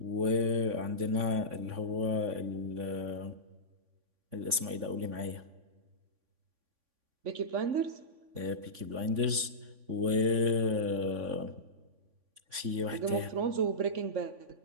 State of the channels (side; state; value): left; late; 3.5 ms